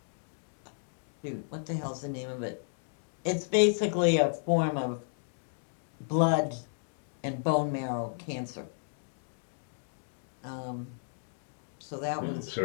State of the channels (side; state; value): right; silent; digital silence